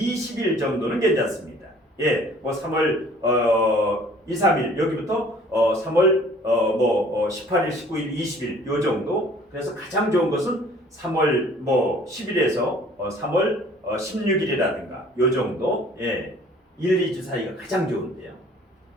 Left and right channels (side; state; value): both; normal; correlation 0.53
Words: 정도는 괜찮습니다. 예, 3월 2, 3일 여기부터 3월 18일, 19일, 20일 요 정도. 그래서 가장 좋은 것은 3월 뭐 10일에서 3월 16일이라든가 요 정도 1, 2주 사이가 가장 좋은데요.